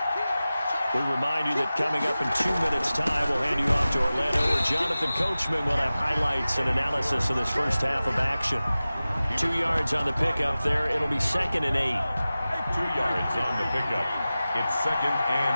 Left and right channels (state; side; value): inverted; both; correlation -0.96